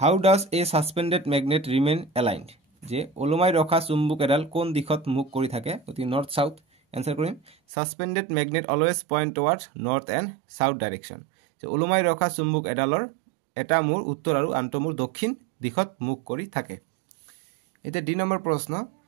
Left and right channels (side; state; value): left; drops out; at 7.6 s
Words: does a suspended magnet remain aligned যে ওলমাই ৰখা চুম্বক এডাল কোন দিশত মুখ কৰি থাকে অতি নৰ্থ সাউথ এনসাৰ কৰিম suspended magnet always point towards north and south direction যে ওলমাই ৰখা চুম্বক এডালৰ এটা মূৰ উত্তৰ আৰু আনটো মূৰ দক্ষিণ দিশত মুখ কৰি থাকে এটা ডি নম্বৰ প্ৰশ্ন